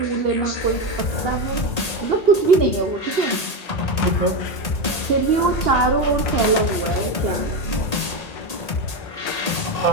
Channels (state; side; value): late; right; 1.8 ms